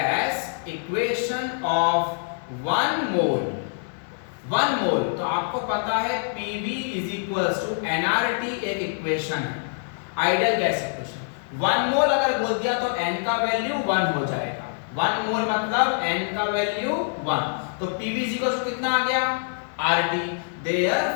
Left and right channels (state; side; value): silent; right; digital silence